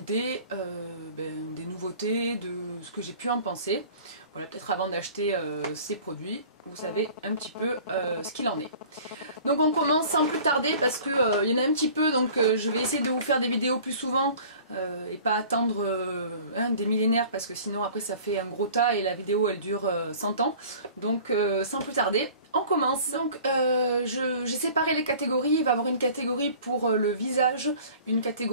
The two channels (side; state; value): both; inverted; correlation -0.46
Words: des nouveautés, de ce que j'ai pu en penser. Voilà, peut-être avant d'acheter ces produits, vous savez un petit peu ce qu'il en est. Donc on commence sans plus tarder parce que y en a un petit peu, donc je vais essayer de vous faire des vidéos plus souvent et pas attendre des millénaires parce que sinon après ça fait un gros tas et la vidéo elle dure 100 ans. Donc sans plus tarder, on commence. Donc j'ai séparé les catégories, il va y avoir une catégorie pour le visage, une